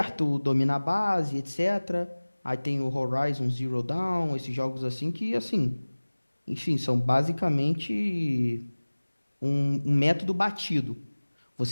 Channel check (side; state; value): both; inverted; correlation -1.00